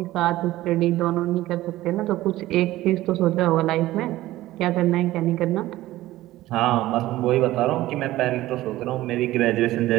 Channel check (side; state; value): left; quieter; 16.2 dB